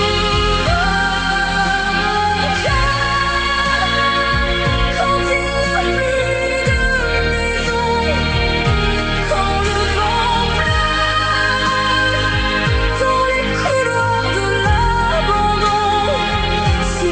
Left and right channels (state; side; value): identical; both; correlation 1.00